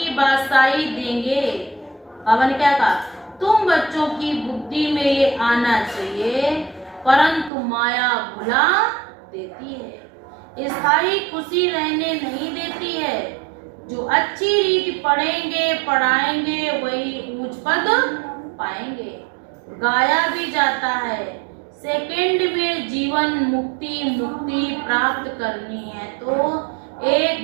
बादशाही देंगे। बाबा ने क्या कहा? तुम बच्चों की बुद्धि में ये आना चाहिए, परंतु माया भुला देती है, स्थायी खुशी रहने नहीं देती है। जो अच्छी रीति पढ़ेंगे पढ़ाएंगे वही ऊंच पद पाएंगे। गाया भी जाता है, सेकंड में जीवन मुक्ति प्राप्त करनी है तो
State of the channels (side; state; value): left; drops out; at 7.5 s